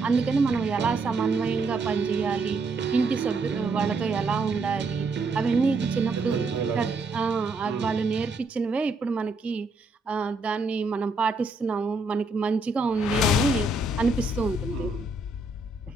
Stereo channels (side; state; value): left; quieter; 3.1 dB